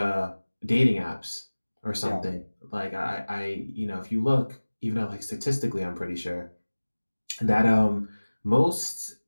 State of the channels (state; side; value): inverted; both; correlation -1.00